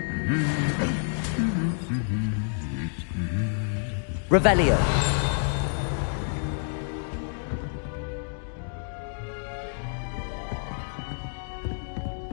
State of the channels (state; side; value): silent; right; digital silence